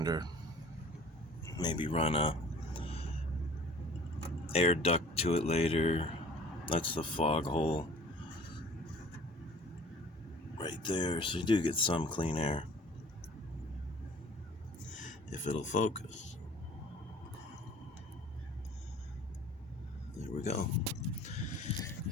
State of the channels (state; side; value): normal; both; correlation 0.49